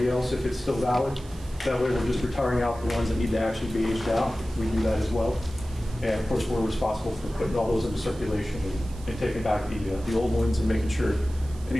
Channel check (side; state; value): right; noise; hiss, 22 dB below the sound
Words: else if it's still valid. That way we're just retiring out the ones that need to actually be aged out. We do that as well. And of course, we're responsible for putting all those into circulation and taking back the old ones and making sure